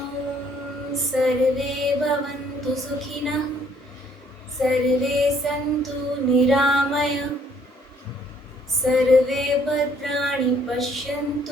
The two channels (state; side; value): normal; both; correlation 0.64